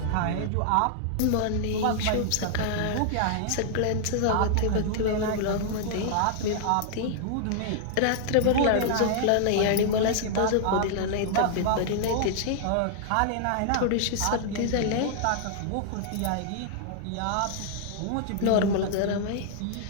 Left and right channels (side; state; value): both; different; correlation -0.01